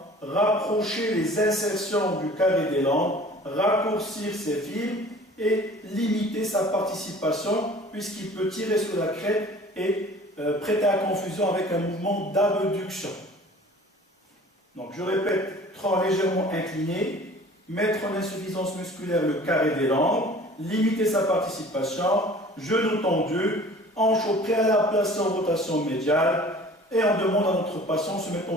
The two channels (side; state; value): both; normal; correlation 0.47